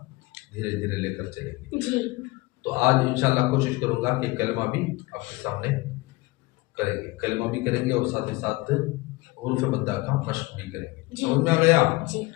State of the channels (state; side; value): quieter; right; 22.0 dB